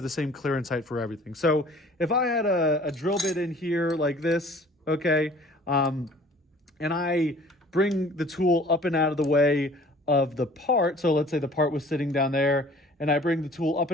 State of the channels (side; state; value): both; normal; correlation 0.50